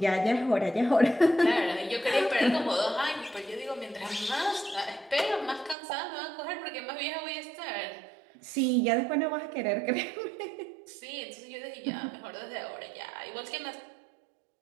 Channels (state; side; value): drops out; left; at 5.8 s